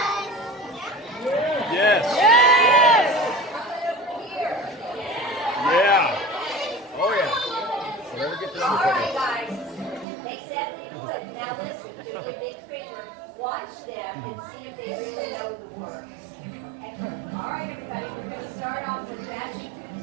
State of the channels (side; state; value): left; drops out; at 10.1 s